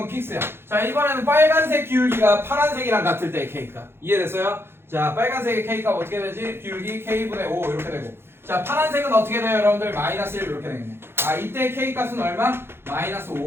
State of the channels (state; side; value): late; left; 0.11 ms